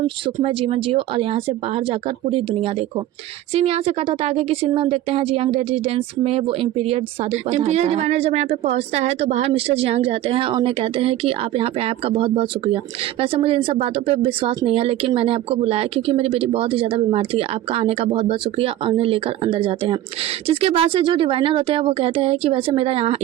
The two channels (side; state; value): left; quieter; 13.6 dB